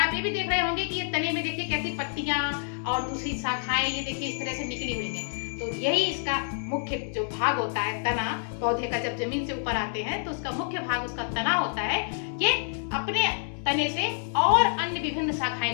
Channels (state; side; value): silent; right; digital silence